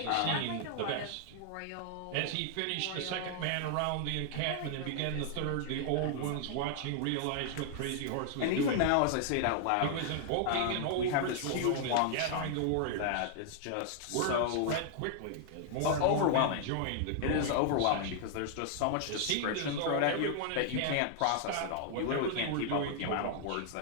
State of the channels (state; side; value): different; both; correlation 0.00